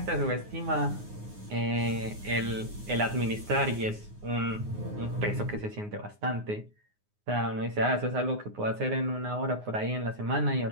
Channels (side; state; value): left; late; 9.6 ms